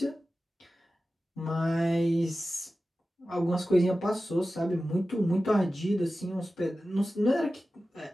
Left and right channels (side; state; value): both; normal; correlation 0.95